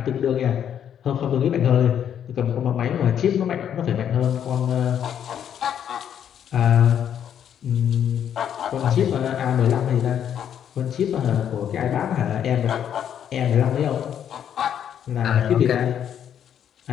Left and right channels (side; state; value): right; quieter; 9.2 dB